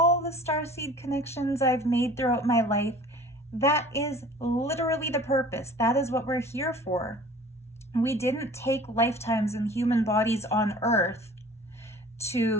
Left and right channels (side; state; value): both; normal; correlation 0.46